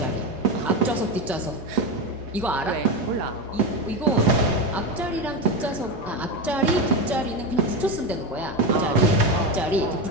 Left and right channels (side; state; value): both; normal; correlation 0.16